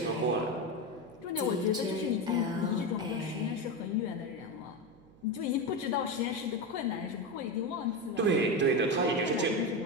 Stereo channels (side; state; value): right; noise; hum, 25 dB below the sound